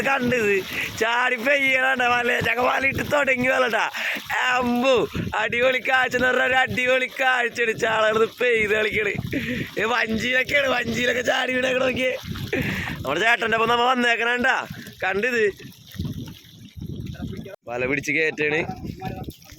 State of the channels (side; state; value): both; identical; correlation 1.00